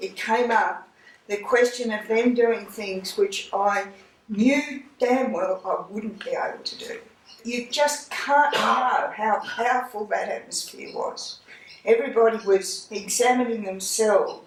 came up, the question of them doing things which I knew damn well I wouldn't be able to do. You just can't know how powerful that atmosphere was. Everybody was examining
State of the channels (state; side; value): identical; both; correlation 1.00